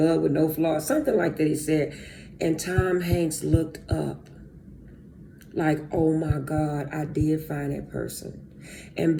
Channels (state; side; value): identical; both; correlation 1.00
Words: with no flaws? Something like that he said. And Tom Hanks looked up like, oh my God, I did find that person. And